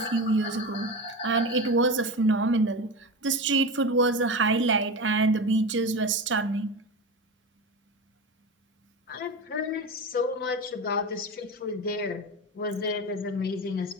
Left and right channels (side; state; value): both; normal; correlation 0.24